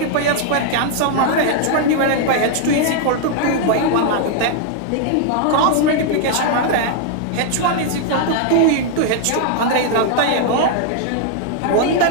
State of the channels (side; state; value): both; different; correlation 0.00